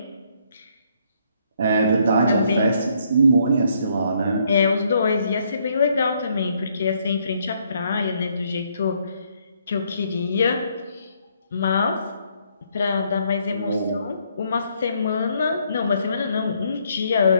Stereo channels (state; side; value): inverted; both; correlation -0.70